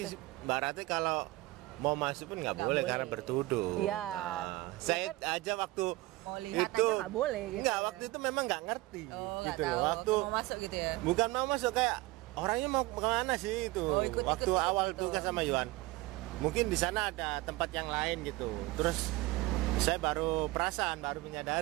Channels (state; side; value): quieter; left; 20.3 dB